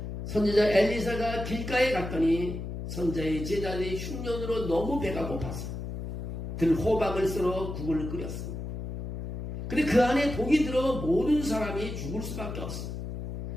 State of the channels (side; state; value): left; noise; hum, 6 dB below the sound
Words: 선지자 엘리사가 길가에 갔더니 선지자의 제자들이 흉년으로 너무 배가 고파서 들호박을 썰어 국을 끓였습니다. 근데 그 안에 독이 들어 모든 사람이 죽을 수밖에 없습니다.